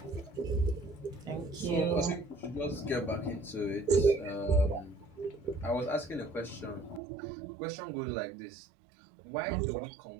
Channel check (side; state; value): left; drops out; at 7.0 s